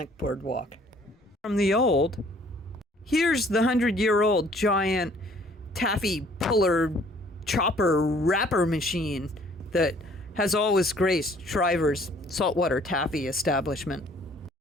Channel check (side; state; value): both; normal; correlation 0.58